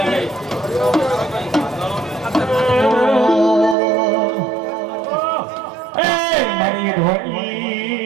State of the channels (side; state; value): left; drops out; at 3.8 s